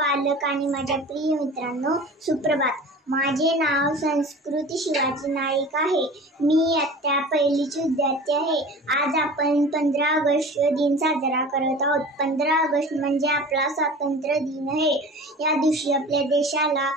आणि माझ्या प्रिय मित्रांनो, सुप्रभात. माझे नाव संस्कृती शिवाजी नाईक आहे. मी इयत्ता 1ची विद्यार्थी आहे. आज आपण 15 ऑगस्ट दिन साजरा करत आहोत. 15 ऑगस्ट म्हणजे आपला स्वातंत्र्य दिन आहे. या दिवशी आपल्या देशाला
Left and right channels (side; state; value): both; normal; correlation 0.39